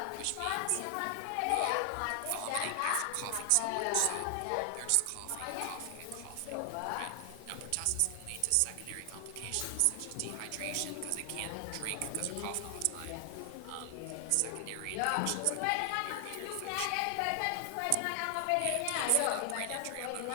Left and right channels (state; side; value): different; both; correlation 0.00